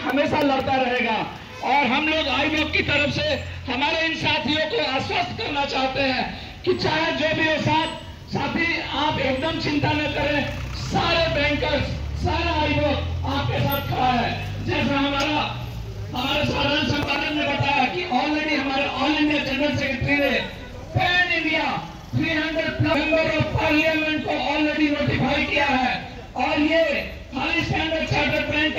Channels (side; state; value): both; identical; correlation 1.00